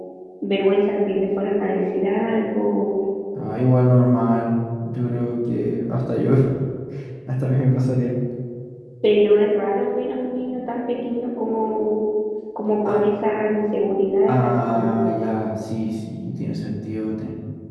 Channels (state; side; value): identical; both; correlation 1.00